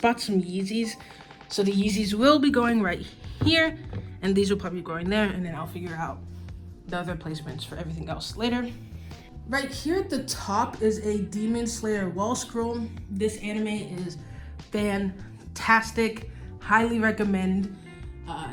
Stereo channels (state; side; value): identical; both; correlation 1.00